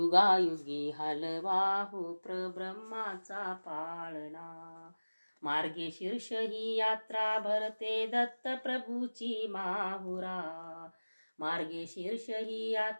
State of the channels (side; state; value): both; inverted; correlation -1.00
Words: हलवा हो प्रब्रह्माचा पाळणा। मार्गशीर्ष ही यात्रा भरते दत्त प्रभूची माहुरा, मार्गशीर्ष ही